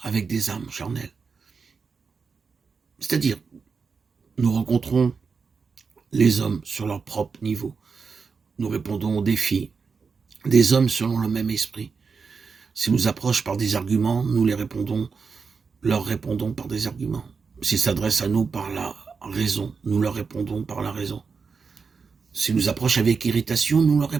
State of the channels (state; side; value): quieter; left; 5.2 dB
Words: avec des âmes charnelles. C'est-à-dire, nous rencontrons les hommes sur leur propre niveau. Nous répondons aux défis des hommes selon le même esprit. S'ils nous approchent par des arguments, nous leur répondons par des arguments. S'ils s'adressent à nous par la raison, nous leur répondons par la raison. S'ils nous approchent avec irritation, nous leur